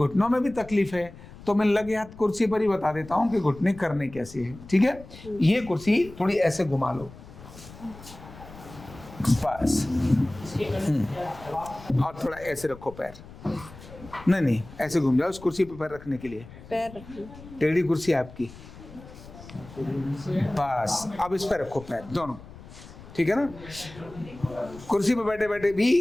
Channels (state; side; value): noise; left; rumble, 17 dB below the sound